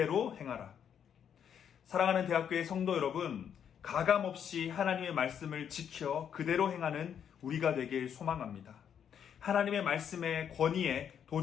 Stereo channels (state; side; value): quieter; right; 8.4 dB